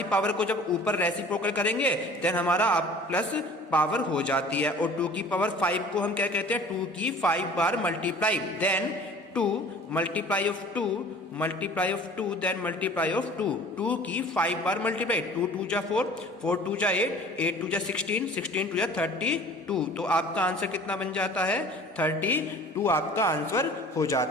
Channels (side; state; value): both; normal; correlation 0.46